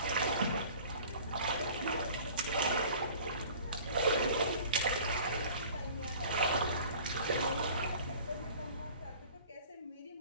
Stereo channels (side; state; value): both; inverted; correlation -0.46